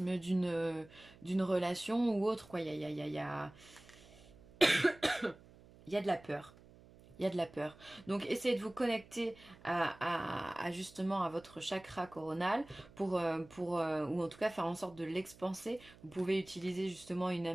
d'une relation ou autre, quoi. Il y a de la peur. Il y a de la peur. Donc essayez de vous connecter justement à votre chakra coronal ou en tout cas faire en sorte de l'expanser. Vous pouvez utiliser justement une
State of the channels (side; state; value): right; noise; hum, 23 dB below the sound